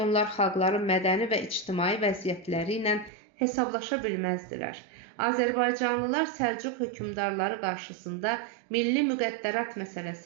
onlar xalqların mədəni və ictimai vəziyyətləri ilə hesablaşa bilməzdilər. Azərbaycanlılar Səlcuq hökmdarları qarşısında milli müqəddərat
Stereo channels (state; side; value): drops out; left; at 3.1 s